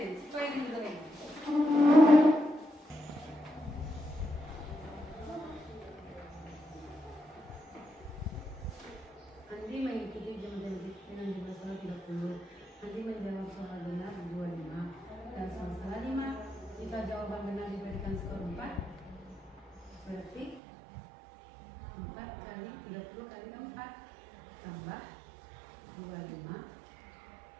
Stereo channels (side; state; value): left; drops out; at 20.6 s